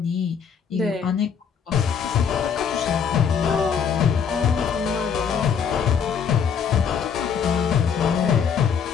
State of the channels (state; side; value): quieter; right; 7.0 dB